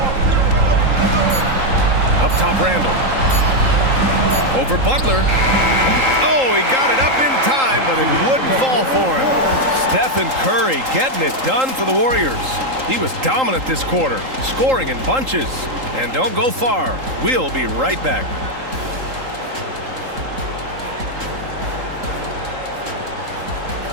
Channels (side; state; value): left; late; 3.8 ms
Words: Up top, Randall. Over Butler. Oh, he got it up in time, but it wouldn't fall for him. Stephen Curry getting it done for the Warriors. He was dominant this quarter, scoring in bunches. And don't go far. We'll be right back.